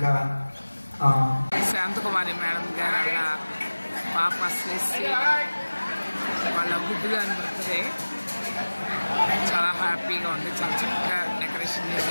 శాంతకుమారి మేడం గారు అలా పాప శ్రేష్ఠి వాళ్ళ గుడ్డుగాని బర్త్డే చాలా హ్యాపీగా ఉంది. చాలా చక్కగా డెకరేషన్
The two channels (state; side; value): inverted; both; correlation -1.00